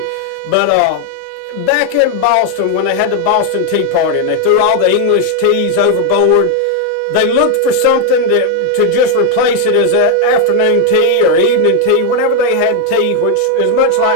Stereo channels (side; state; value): both; different; correlation 0.01